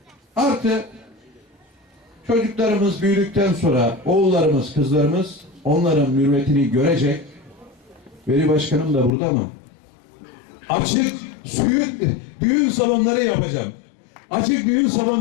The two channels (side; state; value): right; drops out; at 9.1 s